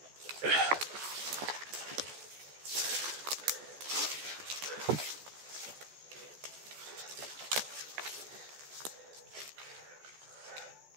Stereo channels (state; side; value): late; left; 14 ms